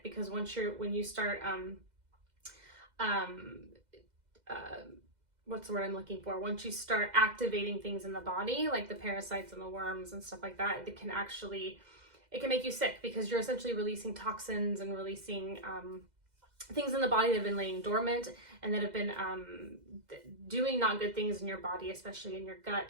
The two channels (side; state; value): left; late; 2.0 ms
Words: because when you start, what's the word I'm looking for? Once you start activating things in the body, like the parasites and the worms and stuff like that, it can make you sick because you're essentially releasing toxins and releasing, things in the body that have been laying dormant and that have been doing not good things in your body, especially in your gut